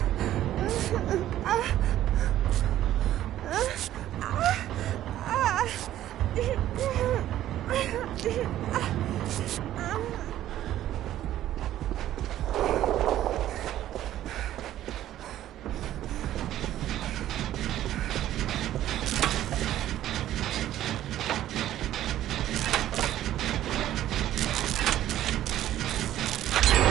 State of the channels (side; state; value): left; quieter; 12.9 dB